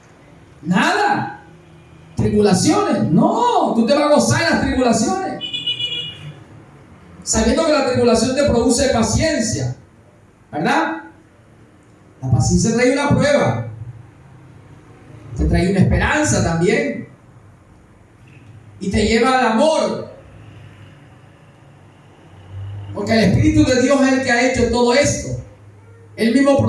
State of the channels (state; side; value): identical; both; correlation 1.00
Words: Nada. ¿Tribulaciones? No, tú te vas a gozar en las tribulaciones, sabiendo que la tribulación te produce paciencia, ¿verdad? La paciencia trae una prueba, te trae una esperanza también, y te lleva al amor, porque el Espíritu de Dios es el que ha hecho todo esto. Él mismo